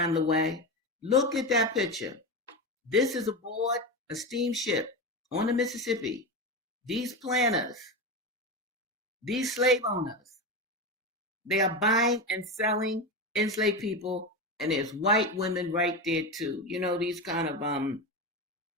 the way. Look at that picture. This is aboard a steamship on the Mississippi. These planters, these slave owners, they are buying and selling enslaved people, and there's white women right there too. You know, these kind of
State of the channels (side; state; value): both; normal; correlation 0.19